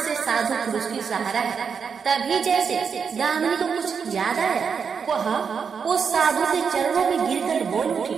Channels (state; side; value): quieter; left; 6.3 dB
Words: साधु पुरुष की सहारा है। तभी जैसे दामिनी को कुछ याद आया, वह उस साधु के चरणों में गिरकर बोल उठी,